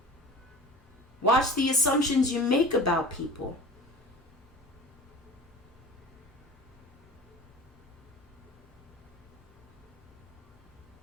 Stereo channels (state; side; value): normal; both; correlation 0.37